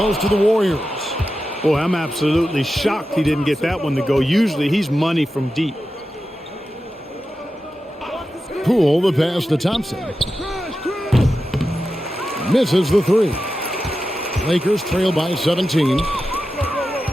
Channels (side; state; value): both; normal; correlation 0.91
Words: to the Warriors. Boy, I'm absolutely shocked he didn't get that one to go. Usually he's money from deep. Poole, the pass to Thompson. Misses the three. Lakers trail by 17.